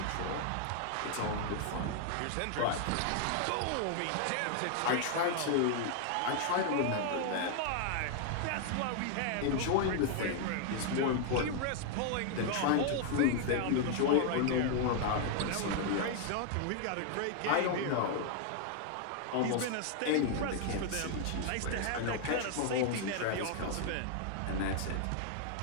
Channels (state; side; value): different; both; correlation 0.00